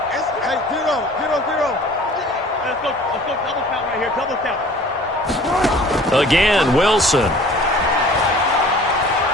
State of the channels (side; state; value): both; normal; correlation 0.48